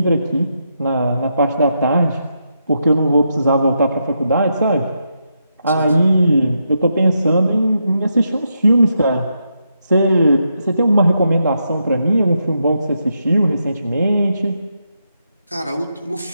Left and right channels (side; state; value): both; inverted; correlation -0.82